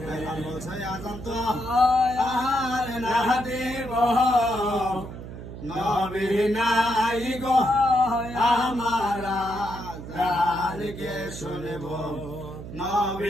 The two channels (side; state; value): right; noise; hum, 11 dB below the sound